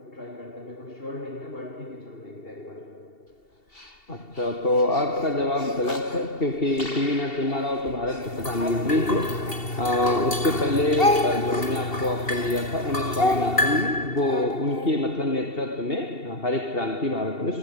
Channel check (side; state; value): right; late; 2.7 ms